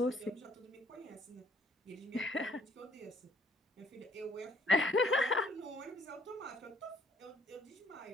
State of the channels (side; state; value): both; normal; correlation 0.63